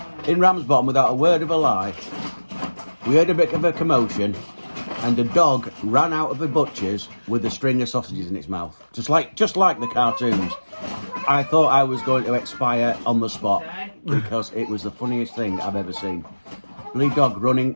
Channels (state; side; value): inverted; both; correlation -1.00